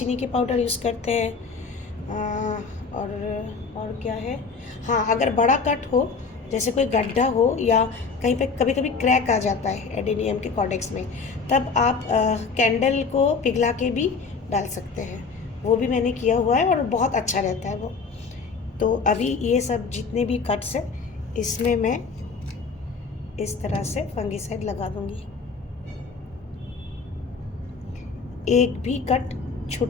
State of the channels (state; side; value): quieter; right; 4.9 dB